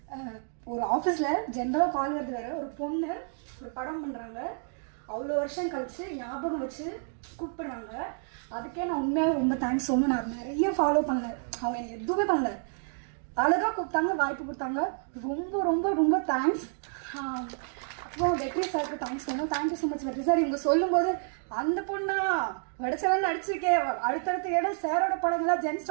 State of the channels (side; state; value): left; silent; 58 dB below the other